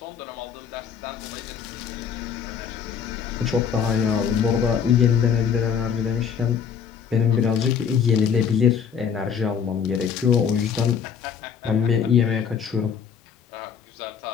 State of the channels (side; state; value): right; quieter; 7.3 dB